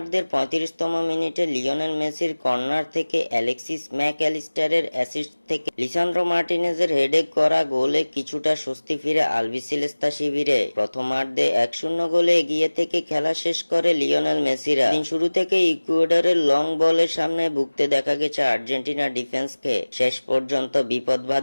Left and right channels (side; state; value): both; inverted; correlation -1.00